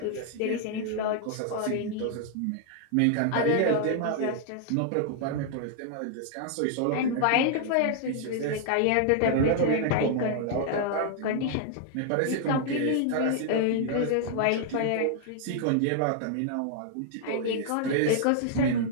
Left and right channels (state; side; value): different; both; correlation 0.00